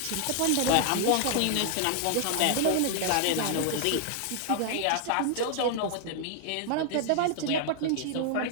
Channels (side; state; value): both; different; correlation 0.00